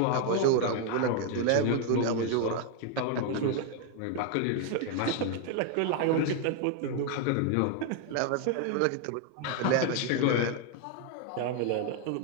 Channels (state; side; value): different; both; correlation 0.00